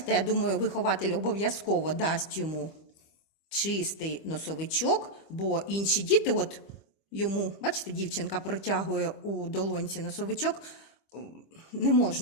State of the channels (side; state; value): right; late; 25 ms